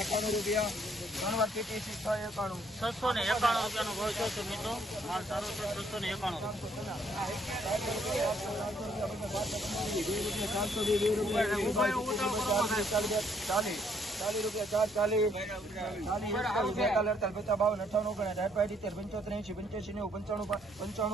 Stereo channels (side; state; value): both; normal; correlation 0.68